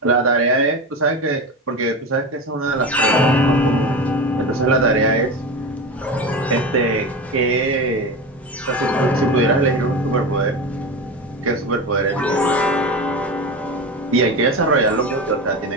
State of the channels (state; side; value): normal; both; correlation 0.24